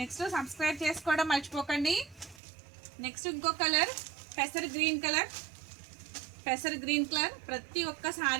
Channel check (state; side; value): drops out; left; at 2.4 s